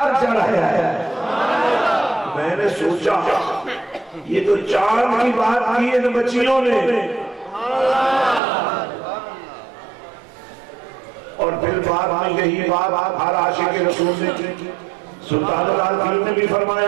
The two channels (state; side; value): drops out; left; at 8.4 s